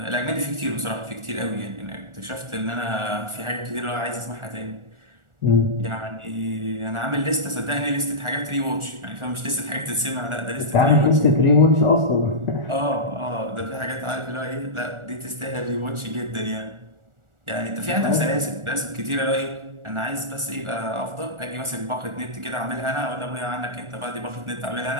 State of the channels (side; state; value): left; late; 1.4 ms